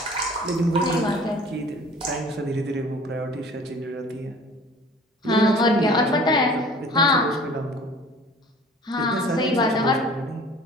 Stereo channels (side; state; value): both; normal; correlation 0.47